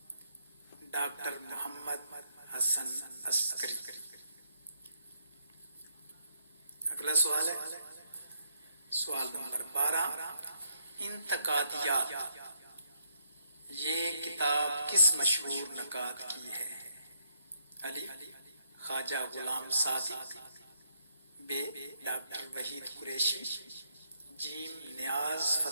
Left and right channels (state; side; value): inverted; both; correlation -0.75